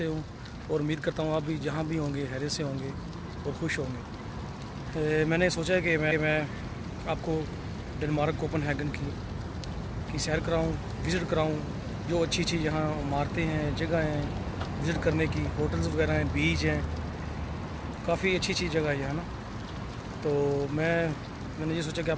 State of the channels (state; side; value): identical; both; correlation 1.00